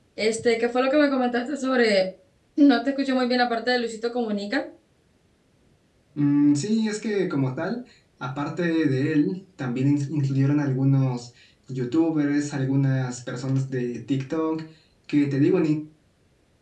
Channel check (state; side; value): identical; both; correlation 1.00